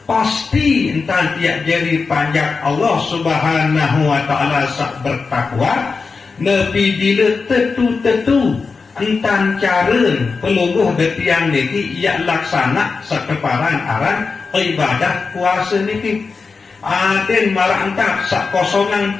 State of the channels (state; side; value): quieter; right; 4.7 dB